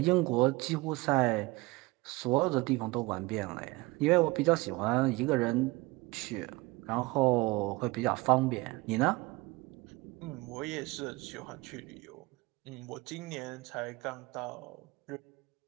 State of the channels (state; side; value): quieter; left; 22.8 dB